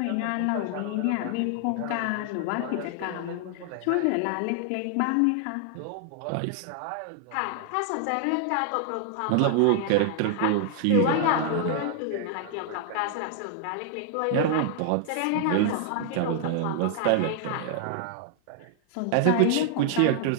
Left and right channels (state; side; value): different; both; correlation 0.00